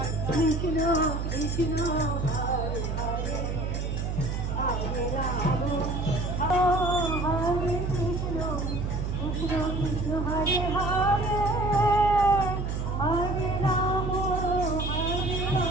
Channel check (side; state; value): right; noise; hum, 2 dB below the sound